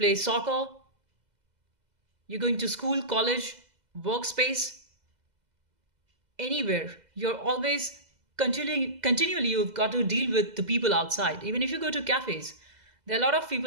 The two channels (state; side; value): late; left; 2.0 ms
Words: soccer, you're going to school, college, workspace, anywhere, you're always continually you've got to deal with the people outside. Even if you go to cafes, there are a lot of